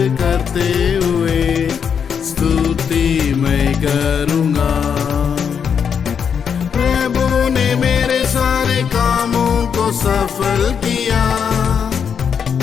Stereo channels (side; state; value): right; quieter; 7.1 dB